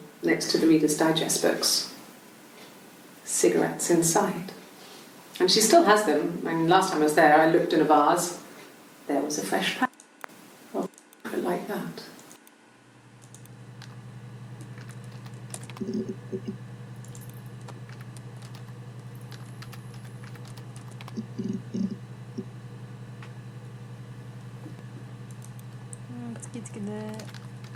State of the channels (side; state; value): both; identical; correlation 1.00